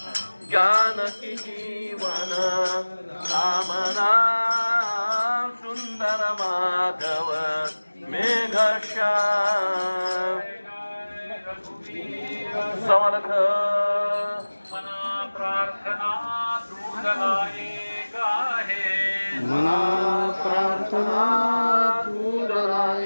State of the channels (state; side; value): inverted; both; correlation -1.00